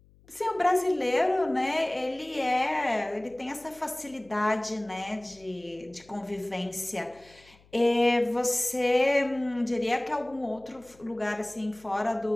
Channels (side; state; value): left; noise; hum, 28 dB below the sound